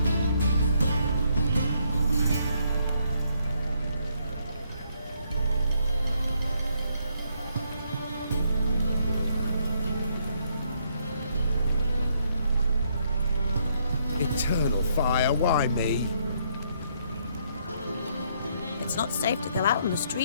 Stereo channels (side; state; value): both; inverted; correlation -0.72